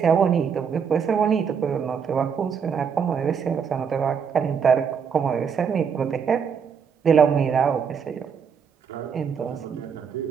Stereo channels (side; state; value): left; quieter; 6.7 dB